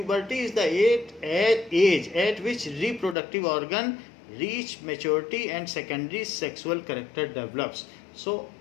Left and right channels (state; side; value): drops out; right; at 3.2 s